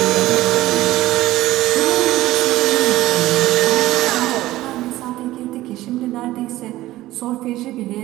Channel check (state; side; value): quieter; left; 16.3 dB